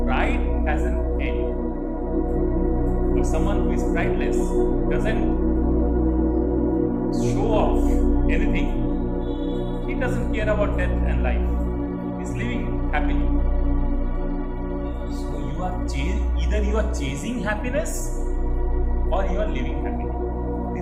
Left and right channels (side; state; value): both; identical; correlation 1.00